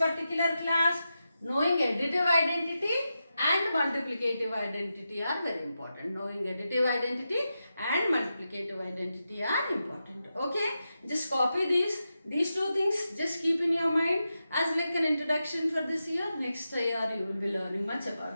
class? Knowing additive identity and multiplicative identity are very important. Knowing additive identity and multiplicative identity are important. Okay, just copy these two things. Just keep in your mind as like an introduction for this year. Next year you will be learning much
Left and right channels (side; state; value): both; inverted; correlation -0.89